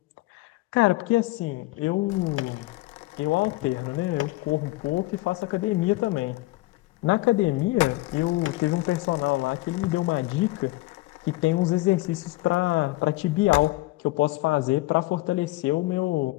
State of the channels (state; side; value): quieter; right; 19.7 dB